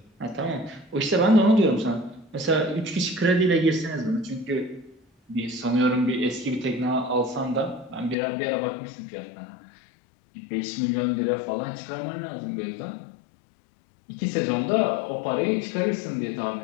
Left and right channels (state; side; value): drops out; right; at 8.2 s